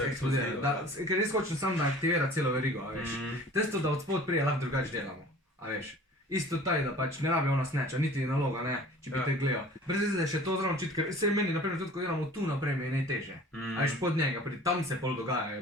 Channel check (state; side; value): normal; both; correlation 0.46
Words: je eksplodira. eksplozivna. Ker res hočem samo, da aktivira celo verigo, a veš. Testo, da od spod prije lahko drugače delamo, a veš. Isto taj, da pač ne rabi ona snatcha, niti naloga, ne, če bi Ja. te gledal. Brez veze, da je še to zraven čit, ker se meni, naprimer, tudi ko delamo tu naprej, mi je najtežje. A veš, pod njega, tam se pol